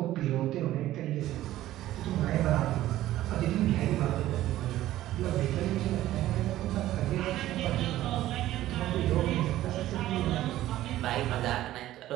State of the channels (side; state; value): left; quieter; 14.5 dB